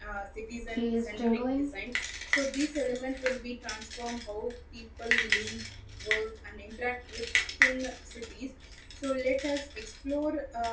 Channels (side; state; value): both; identical; correlation 1.00